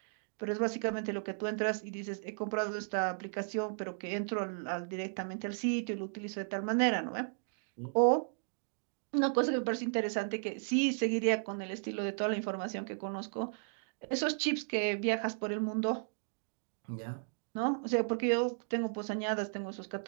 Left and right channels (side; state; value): left; silent; digital silence